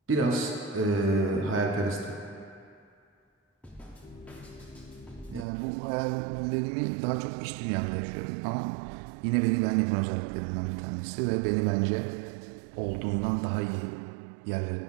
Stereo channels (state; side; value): drops out; left; at 5.5 s